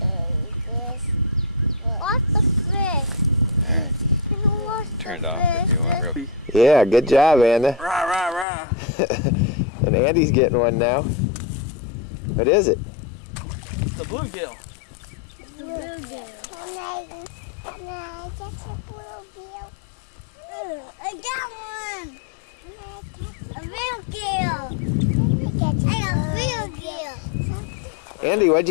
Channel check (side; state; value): right; drops out; at 8.5 s